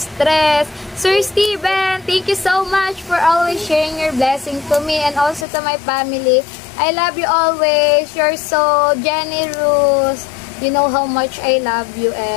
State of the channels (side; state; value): right; drops out; at 5.5 s